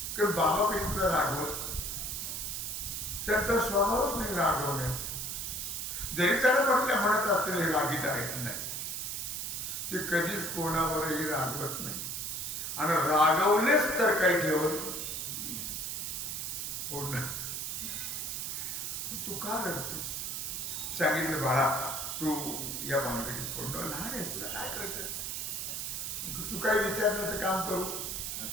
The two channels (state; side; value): noise; right; hiss, 3 dB below the sound